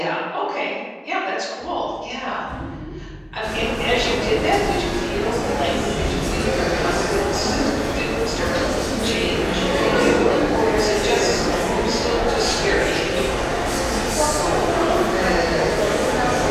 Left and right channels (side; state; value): both; identical; correlation 1.00